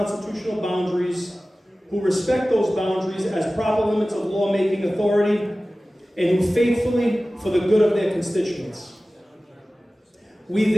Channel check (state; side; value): normal; both; correlation 0.97